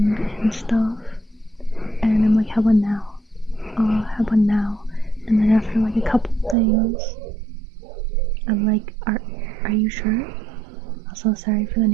stuff, and I'm like, how about now? And then after like a couple things, I'm like, are you sure? I'm so sorry for the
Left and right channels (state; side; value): drops out; left; at 6.6 s